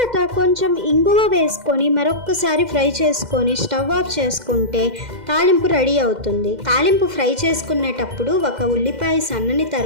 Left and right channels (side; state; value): left; late; 2.1 ms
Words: కొంచెం ఇంగువ వేసుకొని మరొక్కసారి ఫ్రై చేసుకొని స్టవ్ ఆఫ్ చేసుకుంటే తాలింపు రెడీ అవుతుంది. తాలింపు ఫ్రై చేసుకునేటప్పుడు ఒక ఉల్లిపాయ సన్నని